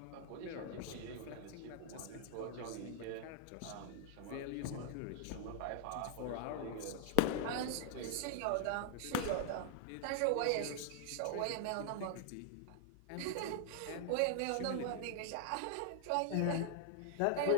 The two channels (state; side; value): different; both; correlation 0.00